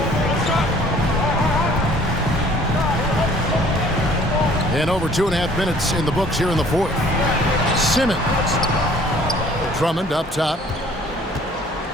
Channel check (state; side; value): normal; both; correlation 0.55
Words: And over 2.5 minutes in the books here in the fourth. Simmons. Drummond up top.